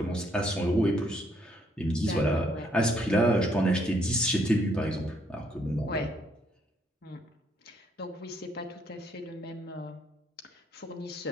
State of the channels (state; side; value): normal; both; correlation 0.70